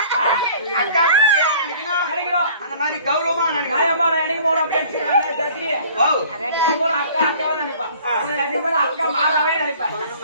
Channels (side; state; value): both; inverted; correlation -0.51